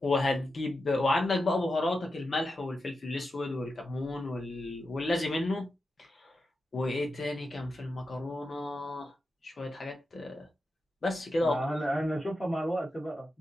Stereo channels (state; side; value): normal; both; correlation 0.89